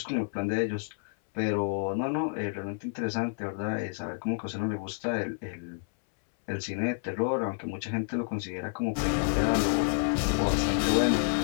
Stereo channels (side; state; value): right; silent; 58 dB below the other